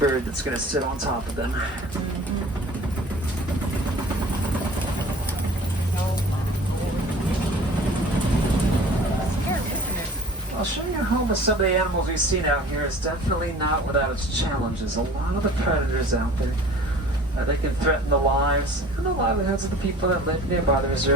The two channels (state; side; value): normal; both; correlation 0.45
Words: that's going to sit on top of them. I'll show you a home of some of the animals we've seen out here. It's definitely not without its challenges. A lot of the predators out there, they can threaten the lives and the livelihoods of the people that live nearby the